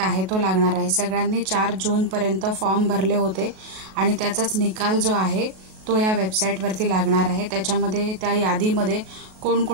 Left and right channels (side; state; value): left; late; 37 ms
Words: आहे तो लागणार आहे। सगळ्यांनी 4 जून पर्यंत फॉर्म भरले होते आणि त्याचाच निकाल जो आहे तो या वेबसाईटवरती लागणार आहे। त्याच्यामध्ये त्या यादीमध्ये